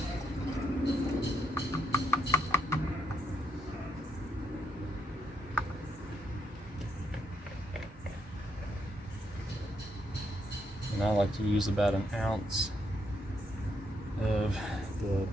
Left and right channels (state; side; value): normal; both; correlation 0.77